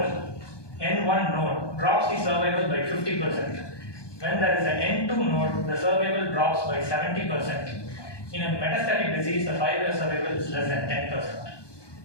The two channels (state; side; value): late; right; 1.2 ms